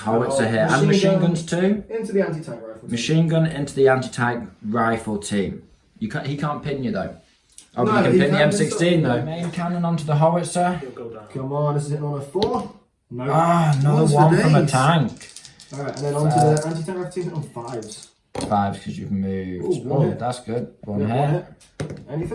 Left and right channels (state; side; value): identical; both; correlation 1.00